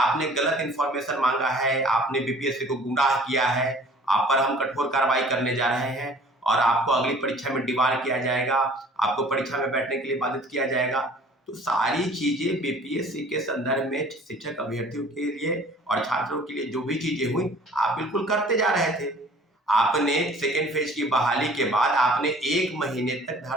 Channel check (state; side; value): normal; both; correlation 0.51